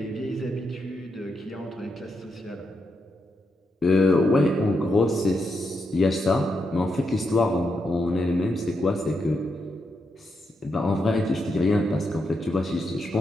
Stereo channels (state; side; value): normal; both; correlation 0.83